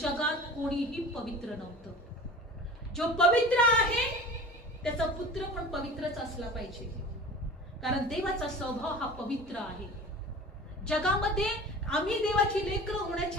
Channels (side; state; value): both; normal; correlation 0.39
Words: कोणीही पवित्र नव्हतं. जो पवित्र आहे त्याचा पुत्र पण पवित्रच असला पाहिजे, कारण देवाचा स्वभाव हा पवित्र आहे. जगामध्ये आम्ही देवाची लेकरं